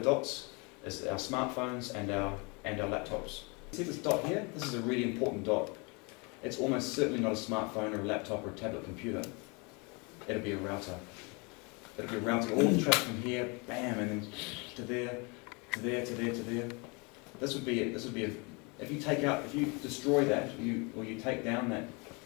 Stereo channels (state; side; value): quieter; right; 30.4 dB